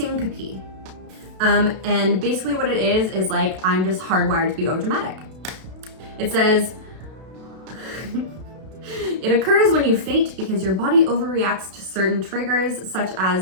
And basically what it is like, I'm just hardwired to be overdramatic. It says, it occurs when you faint because your body overreacts to certain triggers, such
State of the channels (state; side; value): late; left; 32 ms